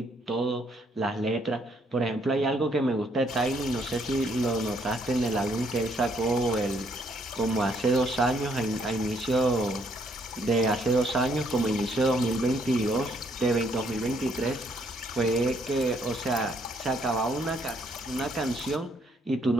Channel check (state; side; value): normal; both; correlation 0.69